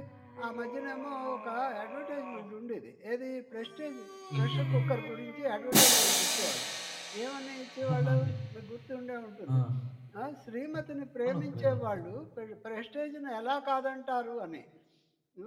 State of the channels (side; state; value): both; identical; correlation 1.00